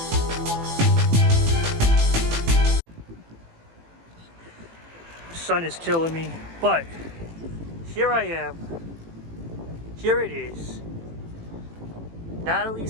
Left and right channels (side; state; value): left; late; 18 ms